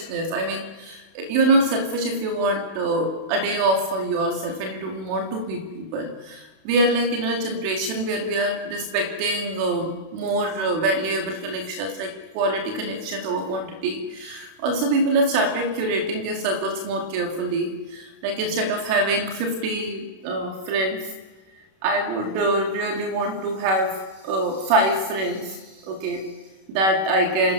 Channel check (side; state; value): left; late; 31 ms